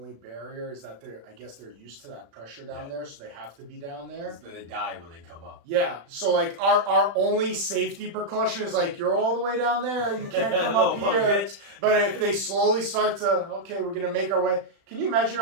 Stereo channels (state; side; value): late; left; 36 ms